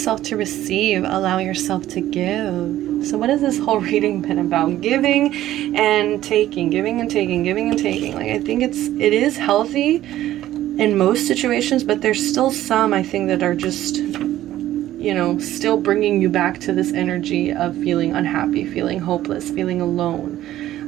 to receive. Allow yourself to give. So what has this whole reading been about? Giving and taking. Giving and taking. Giving and taking. Like, I think it is healthy in most situations, but there's still some, I think, that are just, still bringing you back to this energy of feeling unhappy, feeling hopeless, feeling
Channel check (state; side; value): quieter; left; 13.7 dB